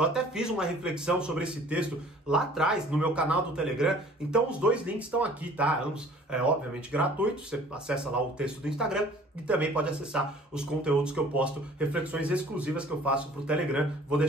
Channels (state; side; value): normal; both; correlation 0.51